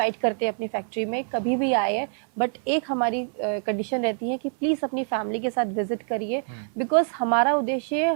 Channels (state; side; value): silent; left; 61 dB below the other